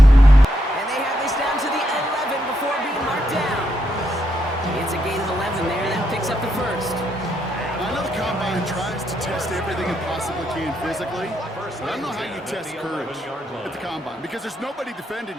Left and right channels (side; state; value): both; normal; correlation 0.80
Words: And they have this down to the 11 before being marked down. It's a gain of 11 there. That picks up the first. I know the Combine tries to test everything it possibly can physically, but I don't know how you test courage at the Combine, because there's nobody defending